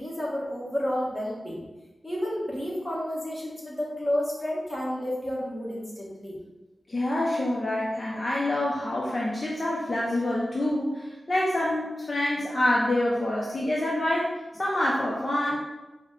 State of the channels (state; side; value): normal; both; correlation 0.94